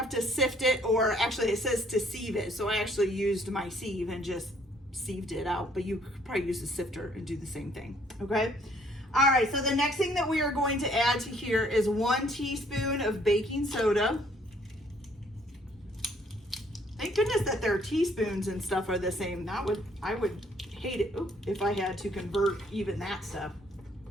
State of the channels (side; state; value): both; normal; correlation 0.63